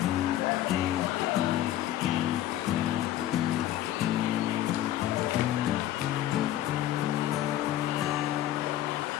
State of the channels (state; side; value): quieter; right; 13.2 dB